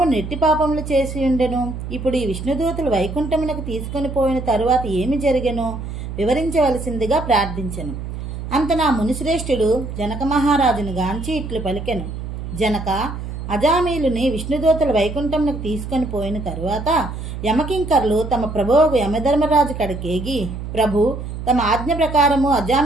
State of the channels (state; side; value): noise; right; hum, 7 dB below the sound